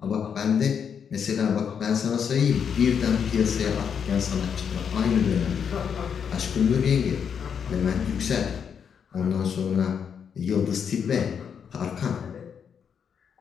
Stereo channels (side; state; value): right; quieter; 7.3 dB